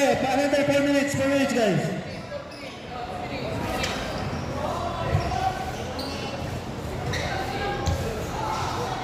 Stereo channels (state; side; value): identical; both; correlation 1.00